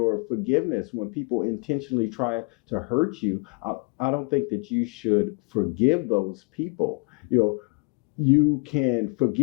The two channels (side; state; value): right; quieter; 34.9 dB